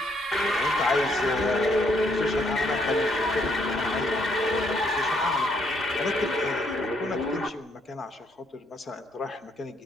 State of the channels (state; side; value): normal; both; correlation 0.71